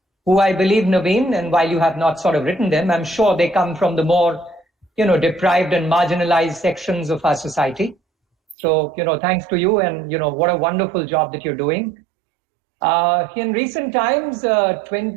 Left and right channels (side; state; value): left; drops out; at 8.6 s